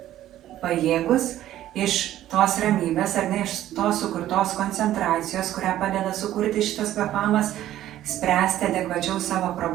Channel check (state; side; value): quieter; left; 13.1 dB